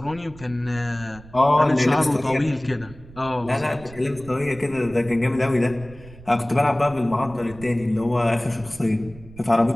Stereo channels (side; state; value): right; noise; rumble, 19 dB below the sound